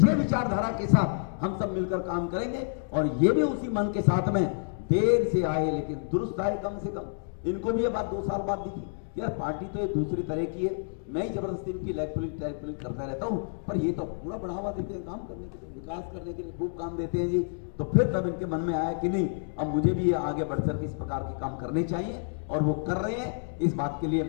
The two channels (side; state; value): right; silent; digital silence